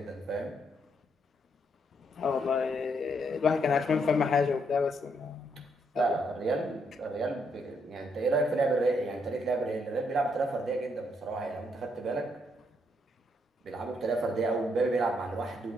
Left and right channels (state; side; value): normal; both; correlation 0.75